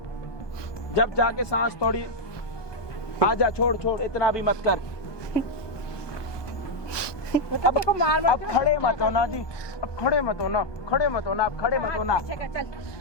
जब जाके सांस थोड़ी आजा, छोड़ इतना भी मत कर। अब खड़े मत होना जी, अब खड़े मत होना, आप खड़े मत होना। चल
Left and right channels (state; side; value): late; right; 1.2 ms